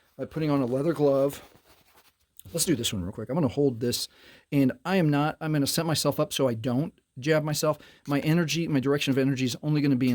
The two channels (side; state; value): both; identical; correlation 1.00